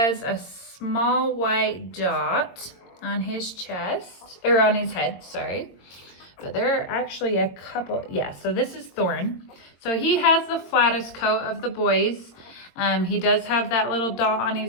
a small white dot on his chest, or on his head, sorry. But there are actually a couple, yeah, so this is Thorn. So he has the flattest coat of the boys. He does have that little dot on his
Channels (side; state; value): right; late; 22 ms